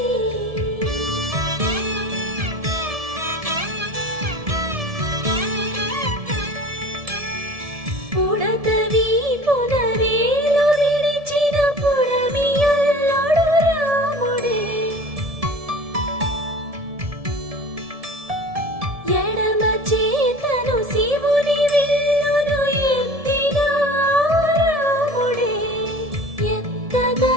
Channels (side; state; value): left; late; 1.7 ms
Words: ఉడత వీపున వేలు విడిచిన పుడమి అల్లుడు రాముడే, ఎడమ చేతను శివుని విల్లును ఎత్తిన రాముడే,